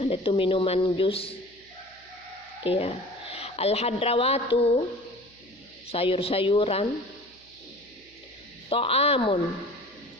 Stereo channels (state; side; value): noise; right; hum, 29 dB below the sound